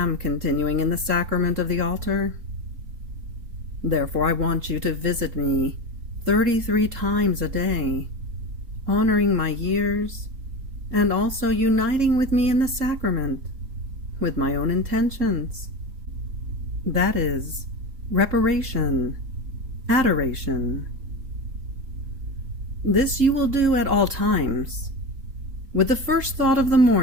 continuing in the sacrament of the altar. Therefore I want you to visit me 33 times a day, honoring my years, and also uniting with me in the sacrament, with my own intentions. That is, reparation, adoration. This you will do at all times. With the first thought of the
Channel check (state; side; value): late; left; 3.7 ms